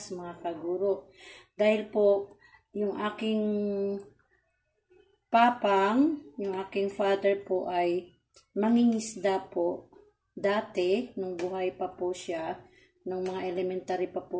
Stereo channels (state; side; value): identical; both; correlation 1.00